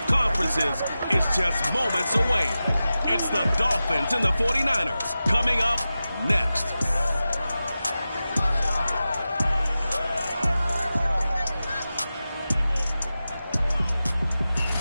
conferences is just moments away. It's the Dolphins and the 49ers coming up next.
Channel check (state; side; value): inverted; both; correlation -0.94